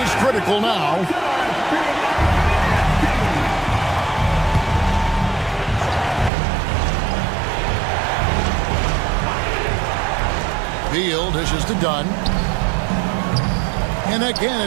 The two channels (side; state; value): left; drops out; at 6.3 s